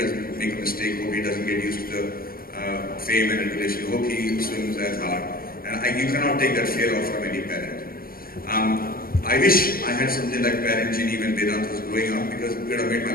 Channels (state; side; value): late; right; 0.43 ms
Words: make a mistake, hope he doesn't get used to the fame and adulation, hope he swims as hard. And you cannot take that fear off from any parent. I wish I had something like parent Geenee when Vedant was growing up, because it would have made my